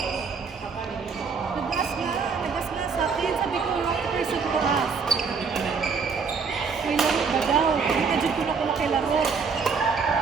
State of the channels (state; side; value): quieter; left; 5.4 dB